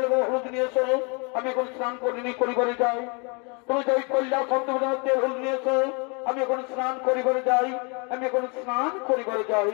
এবং হলুদ নিয়ে এসো আমি এখন স্নান করিনি করিবারে যাই তুমি যাই কৈলাস অন্তপুর তেল হলুদ নিয়ে এসো আমি এখন স্নান করিবারে যাই আমি এখন স্নান করিবারে যাই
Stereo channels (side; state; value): right; quieter; 33.1 dB